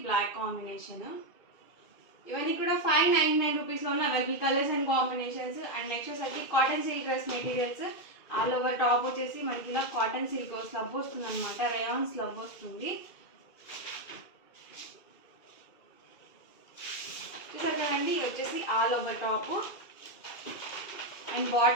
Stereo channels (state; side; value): late; right; 2.3 ms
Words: బ్లాక్ కాంబినేషన్. ఇవన్నీ కూడా 599 రూపీస్లో ఉన్న available colours and combinations. And next వచ్చేసరికి cotton silk dress materials. All over top వచ్చేసి మనకి ఇలా కాటన్ సిల్క్ స్లబ్ వస్తుంది అనమాట, రేయాన్ స్లబ్ వస్తుంది. చూసారు కదండి, వచ్చేసి all over top. And